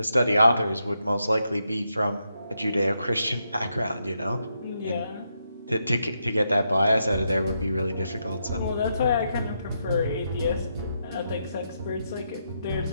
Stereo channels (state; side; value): inverted; both; correlation -0.81